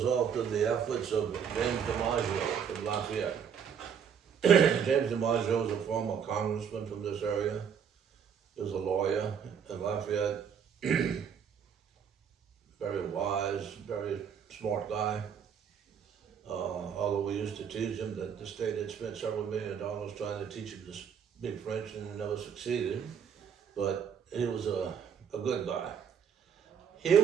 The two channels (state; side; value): quieter; left; 7.6 dB